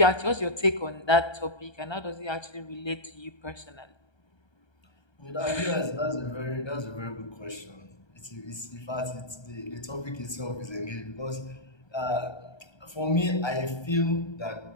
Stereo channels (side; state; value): right; late; 1.3 ms